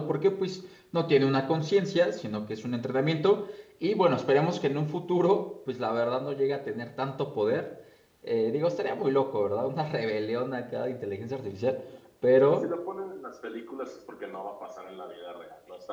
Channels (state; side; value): identical; both; correlation 1.00